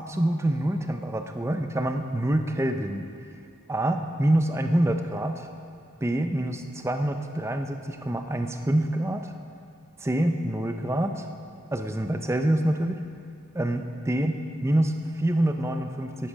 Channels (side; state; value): both; normal; correlation 0.90